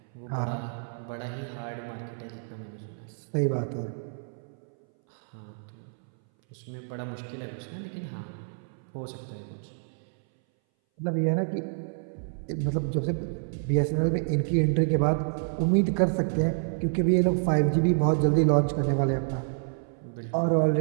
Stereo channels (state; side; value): silent; left; 59 dB below the other